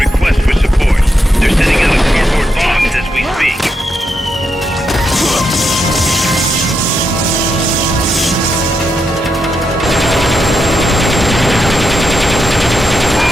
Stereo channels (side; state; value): both; normal; correlation 0.83